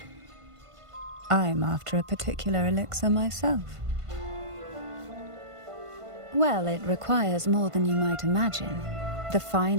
I'm after a particular elixir myself. Well, it requires more than you might imagine. The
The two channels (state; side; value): late; left; 1.5 ms